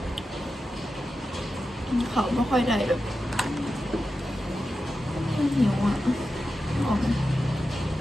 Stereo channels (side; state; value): both; normal; correlation 0.91